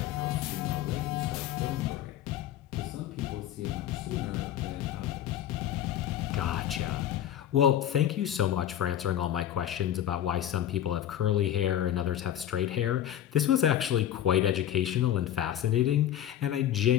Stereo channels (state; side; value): quieter; right; 11.2 dB